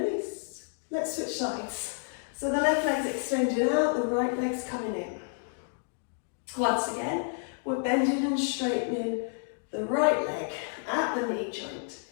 Let's switch sides. So the left leg's extending out, the right leg's coming in. Once again, we're bending and straightening the right leg at the knee joint.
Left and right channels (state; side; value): silent; right; digital silence